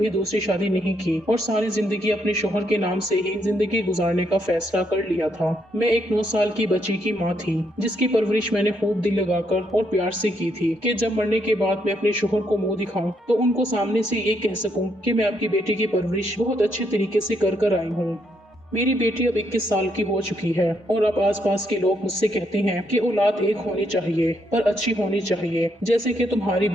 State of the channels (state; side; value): normal; both; correlation 0.75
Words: दूसरी शादी नहीं की और सारी जिंदगी अपने शौहर के नाम से ही जिंदगी गुजारने का फैसला कर लिया था। मैं एक 9 साल की बच्ची की माँ थी, जिसकी परवरिश मैंने खूब दिल लगाकर और प्यार से की थी कि जब मरने के बाद मैं अपने शौहर को मुंह दिखाऊं तो उनको सामने से ये कह सकूं कि मैं आपकी बेटी की परवरिश बहुत अच्छे तरीके से कर आई हूँ। मेरी बेटी अब 21 साल की हो चुकी है और अब आसपास के लोग मुझसे कहते हैं कि औलाद एक होनी चाहिए, पर अच्छी होनी चाहिए, जैसे कि तुम्हारी